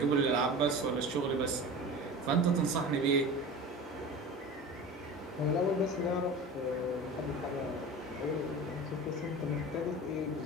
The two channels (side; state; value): both; normal; correlation 0.34